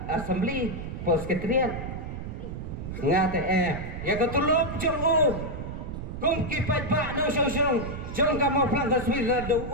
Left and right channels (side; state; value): right; noise; rumble, 7 dB below the sound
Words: Assembly Post Ketrian ngate ya ketulop jong kum kipat ba no song jong ka mo plan taswir la do